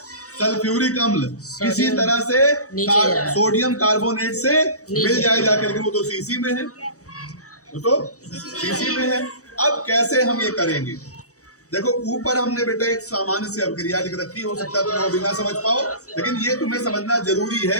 सल्फ्यूरिक अम्ल किसी तरह से सोडियम कार्बोनेट से मिल जाए जाके, लेकिन वो तो शीशी में है, शीशी में है। अब कैसे हम ये करेंगे? देखो ऊपर हमने बेटा एक सामान्य सी अभिक्रिया लिख रखी, हो सकता है तुम वो भी ना समझ पाओ, लेकिन ये तुम्हें समझना जरूरी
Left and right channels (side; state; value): right; late; 0.66 ms